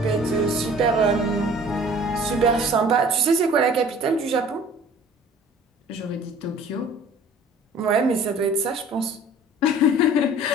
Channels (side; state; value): both; normal; correlation 0.49